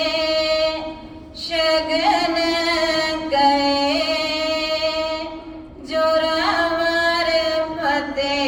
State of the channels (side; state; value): both; identical; correlation 1.00